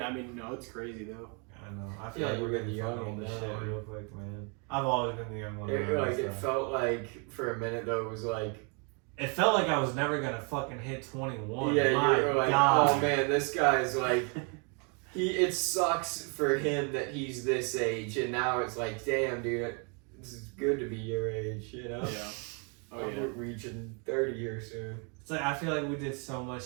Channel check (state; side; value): quieter; left; 35.8 dB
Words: mean, no, it's crazy though. I know. I feel Yeah, like we're you're getting the young young on this one shit now. real quick, man. I've always been the young one. around Like this it stuff. felt like for a minute though it was like It felt like I was never gonna fucking hit 21. yeah, My you were like, God. oh man, this guy's like it sucks for him that he's this age, and now it's like, damn, dude, this is good to be your age, you know? Oh I'm yeah. reaching 30 here soon. It's like I feel like we did so